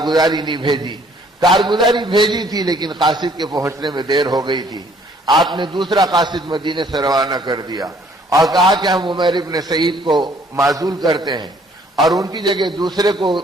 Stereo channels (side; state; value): both; normal; correlation 0.61